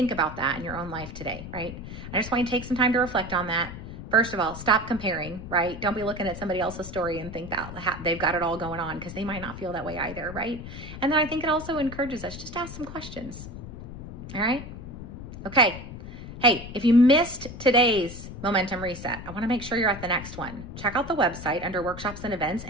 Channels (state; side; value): noise; left; rumble, 11 dB below the sound